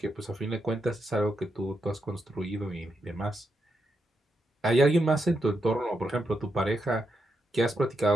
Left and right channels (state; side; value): normal; both; correlation 0.83